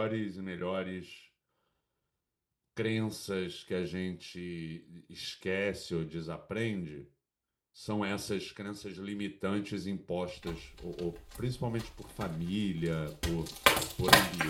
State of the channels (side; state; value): both; identical; correlation 1.00